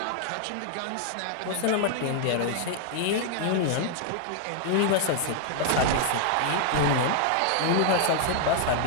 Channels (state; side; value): different; both; correlation 0.00